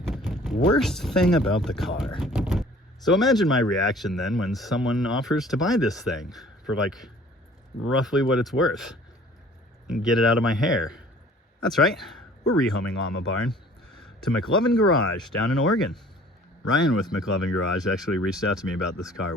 Worst thing about the car. So imagine my reaction then when someone offers to buy this thing for like roughly what it's worth and get it out of my hair. That's right, we're rehoming Llama Barn to McLovin Garage down in Oregon. Ryan with McLovin Garage actually reached out to me about this car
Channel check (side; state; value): both; normal; correlation 0.52